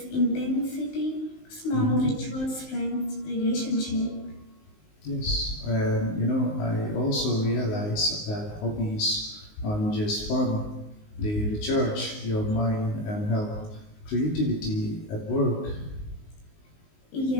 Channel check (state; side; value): late; right; 19 ms